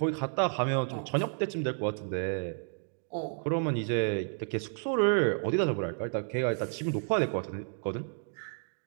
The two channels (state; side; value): silent; left; 57 dB below the other